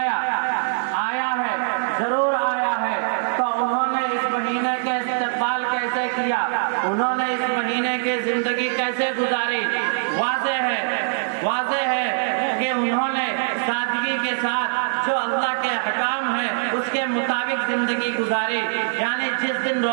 آیا ہے، ضرور آیا ہے۔ تو انہوں نے اس مہینے کا استقبال کیسے کیا؟ انہوں نے اس مہینے کی زندگی کیسے گزاری؟ واضح ہے کہ انہوں نے سادگی کے ساتھ جو اللہ کے احکام ہیں اس کے مطابق زندگی گزاری، یعنی جس دن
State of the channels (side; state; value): left; silent; 64 dB below the other